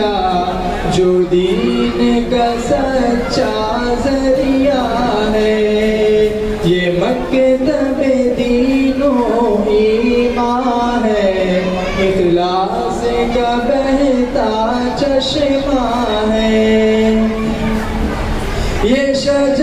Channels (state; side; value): identical; both; correlation 1.00